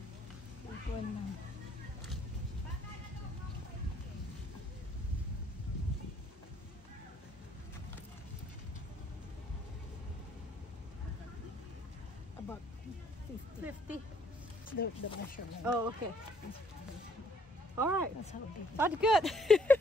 This one now. About 50. The measurement. Oh, okay. All right. That's how big. That's good.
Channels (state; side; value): normal; both; correlation 0.65